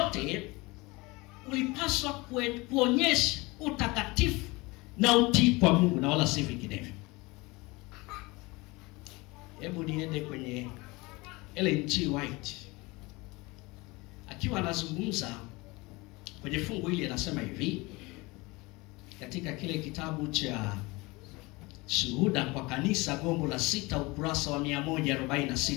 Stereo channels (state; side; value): quieter; right; 23.8 dB